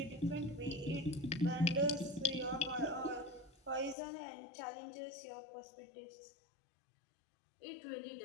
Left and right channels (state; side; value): drops out; right; at 4.0 s